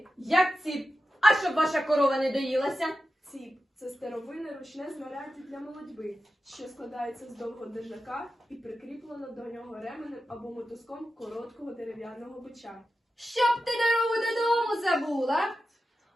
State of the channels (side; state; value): both; normal; correlation 0.92